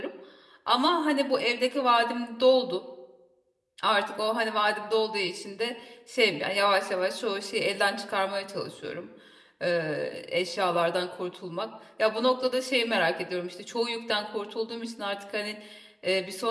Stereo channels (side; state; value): both; identical; correlation 1.00